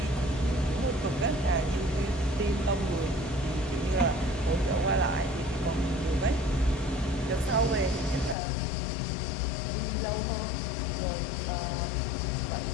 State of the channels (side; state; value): right; drops out; at 8.3 s